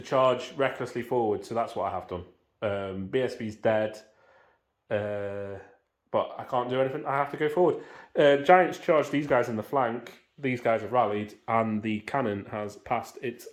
charge recklessly forward, so that's what I have done. BSB's dead, but I can't do anything. I have to go forward. Giants charge these guys in the flank. These guys have rallied, and the cannon has passed its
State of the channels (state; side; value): identical; both; correlation 1.00